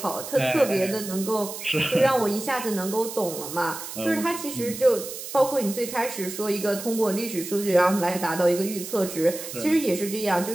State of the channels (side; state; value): right; noise; hiss, 9 dB below the sound